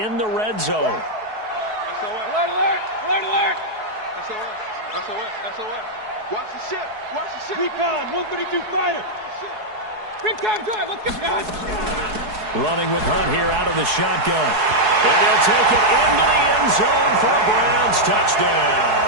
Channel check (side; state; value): left; late; 4.7 ms